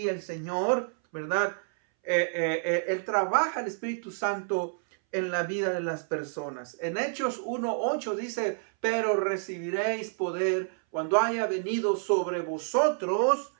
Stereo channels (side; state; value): left; silent; 59 dB below the other